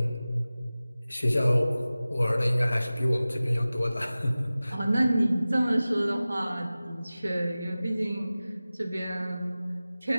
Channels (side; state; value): both; inverted; correlation -0.97